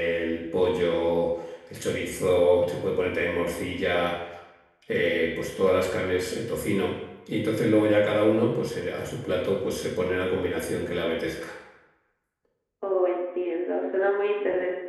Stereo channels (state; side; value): identical; both; correlation 1.00